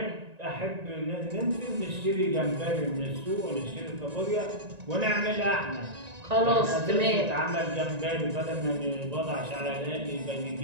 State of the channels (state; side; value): late; left; 1.9 ms